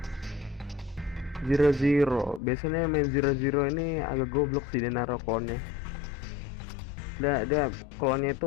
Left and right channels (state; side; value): drops out; right; at 2.4 s